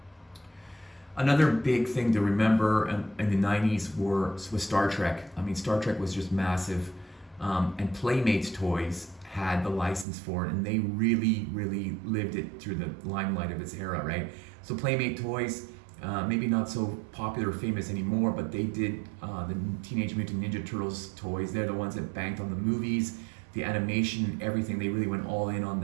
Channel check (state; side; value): drops out; left; at 10.1 s